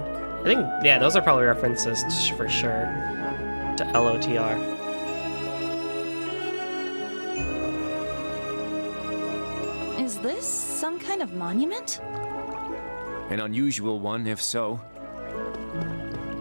I think, yeah, those are probably references for sure to LOTR. Is this some kind of monument? An unusual one, if so.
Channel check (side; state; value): both; inverted; correlation -1.00